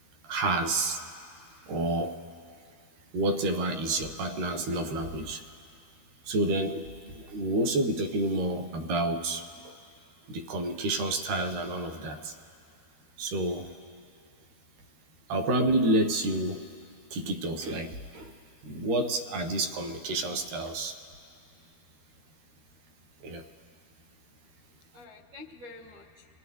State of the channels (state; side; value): late; left; 13 ms